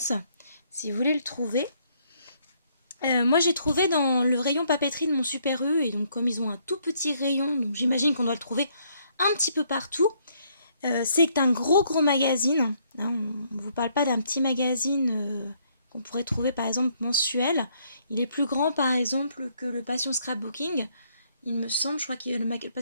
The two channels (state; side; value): inverted; both; correlation -0.69